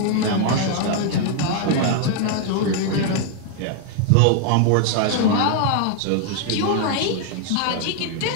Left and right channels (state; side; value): different; both; correlation 0.00